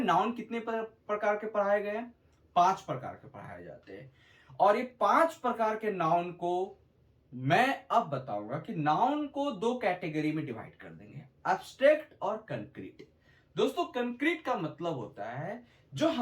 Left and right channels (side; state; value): both; identical; correlation 1.00